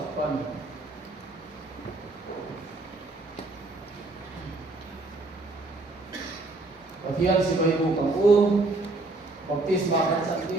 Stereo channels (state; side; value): quieter; left; 3.1 dB